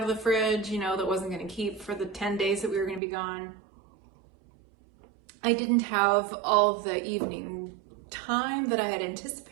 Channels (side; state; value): left; drops out; at 3.0 s